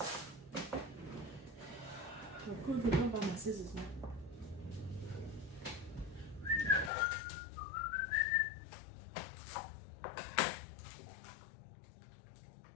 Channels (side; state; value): right; drops out; at 6.9 s